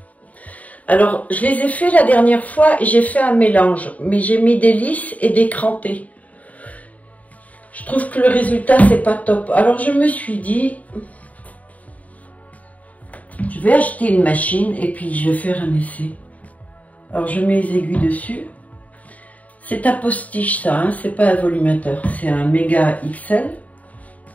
Alors, je les ai fait la dernière fois et j'ai fait un mélange. Mais j'ai mis des lisses et des crantés. Je trouve que le résultat, c'est pas top. Alors, je me suis dit... je vais acheter une machine et puis je vais faire un essai. Alors je mets les aiguilles dessus. C'est un postiche ça, hein, c'est pas un volumateur. C'est un méga XL.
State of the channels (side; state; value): right; late; 0.071 ms